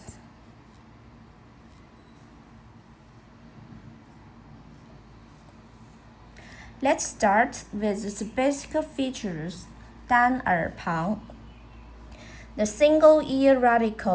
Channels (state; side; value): identical; both; correlation 1.00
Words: Let's start with its basic features. 单耳旁 The single ear